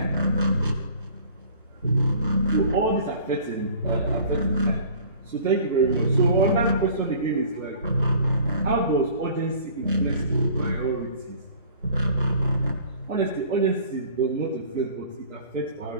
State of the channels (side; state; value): both; inverted; correlation -0.49